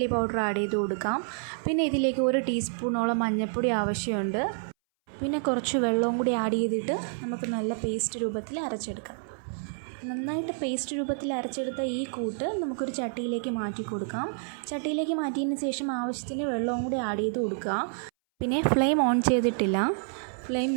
പൗഡർ ആഡ് ചെയ്ത് കൊടുക്കാം. പിന്നെ ഇതിലേക്ക് 1 ടീസ്പൂണോളം മഞ്ഞൾപ്പൊടി ആവശ്യമുണ്ട്. പിന്നെ കുറച്ച് വെള്ളവും കൂടി ആഡ് ചെയ്തിട്ട് നമുക്ക് നല്ല പേസ്റ്റ് രൂപത്തിൽ അരച്ചെടുക്കാം. നന്നായിട്ട് പേസ്റ്റ് രൂപത്തിൽ അരച്ചെടുത്ത ഈ കൂട്ട് നമുക്കൊരു ചട്ടിയിലേക്ക് മാറ്റി കൊടുക്കാം. ചട്ടിയിലേക്ക് മാറ്റിയതിന് ശേഷം ആവശ്യത്തിന് വെള്ളവും കൂടി ആഡ് ചെയ്ത് കൊടുക്കുക. പിന്നെ ഫ്ലെയിം ഓൺ ചെയ്തിട്ടില്ല.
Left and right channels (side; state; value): left; silent; 59 dB below the other